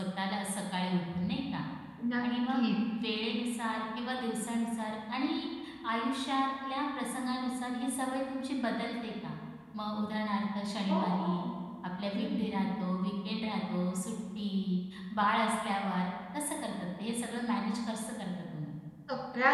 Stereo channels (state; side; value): identical; both; correlation 1.00